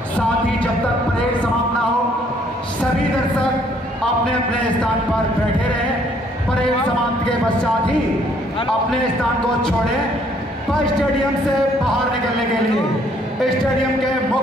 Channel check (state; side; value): normal; both; correlation 0.64